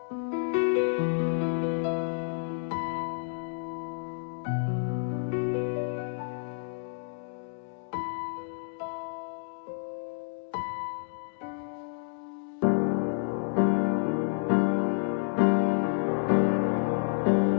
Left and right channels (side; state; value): right; silent; digital silence